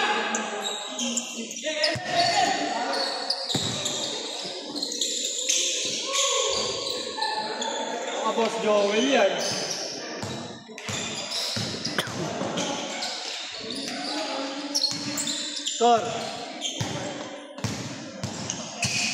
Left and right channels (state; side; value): identical; both; correlation 1.00